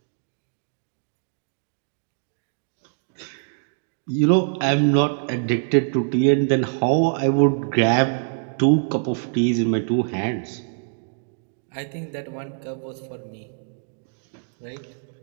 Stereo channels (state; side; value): silent; left; digital silence